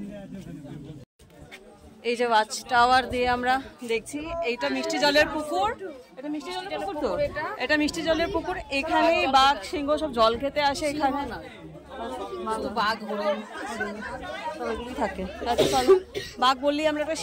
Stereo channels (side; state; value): both; identical; correlation 1.00